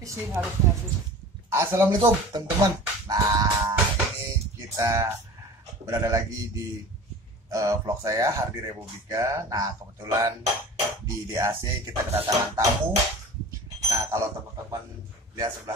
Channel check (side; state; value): both; normal; correlation 0.40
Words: sih harusnya sih. Assalamualaikum teman-teman. Nah, ini kita berada lagi di vlog saya Hardi Republika. Nah, kebetulan di DAC kita kedatangan tamu. Nah, kalau teman-teman lihat